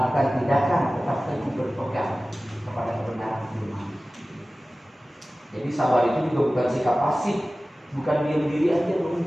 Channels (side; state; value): both; normal; correlation 0.97